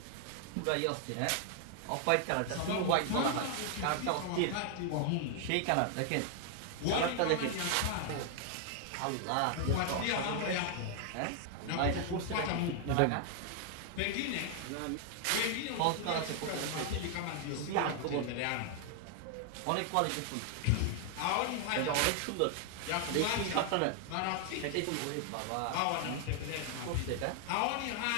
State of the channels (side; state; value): both; different; correlation 0.00